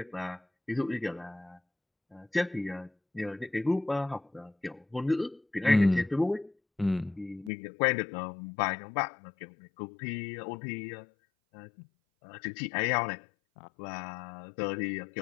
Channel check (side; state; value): right; drops out; at 7.5 s